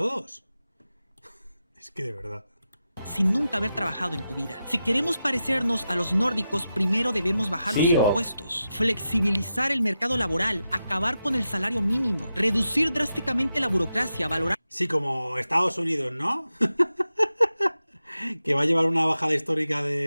Es que de verdad. Sin nunca haber trabajado en tu vida. Si queremos parecernos a los nórdicos, primero debemos bajar los impuestos, flexibilizar el mercado laboral, acabar con el salario mínimo, reducir drásticamente la burocracia, valorar... Sí, como Estados Unidos, ¿no? Que va a llevar una bajada histórica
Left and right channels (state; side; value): inverted; both; correlation -0.90